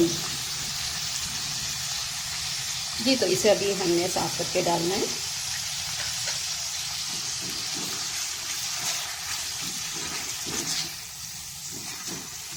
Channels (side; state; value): both; identical; correlation 1.00